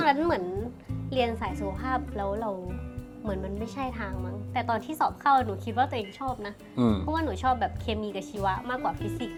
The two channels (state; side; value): identical; both; correlation 1.00